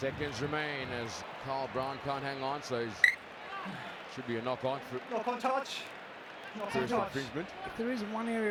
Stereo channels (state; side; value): identical; both; correlation 1.00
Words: remain as Carl Brown can't hang on, so it should be a knock-on for touch. first infringement. If there is one area